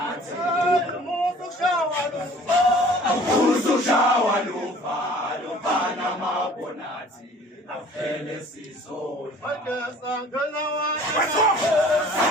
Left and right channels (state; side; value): normal; both; correlation 0.50